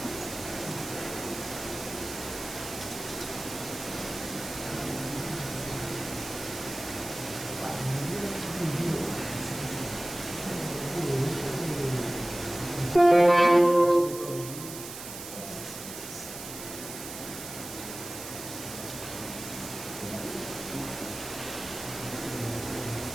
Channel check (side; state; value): right; noise; hiss, 10 dB below the sound